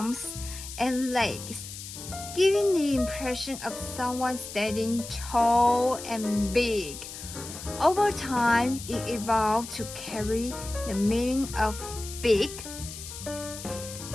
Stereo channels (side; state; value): left; noise; hiss, 11 dB below the sound